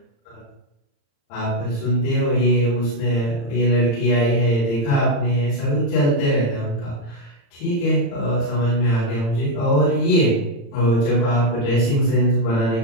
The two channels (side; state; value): right; late; 35 ms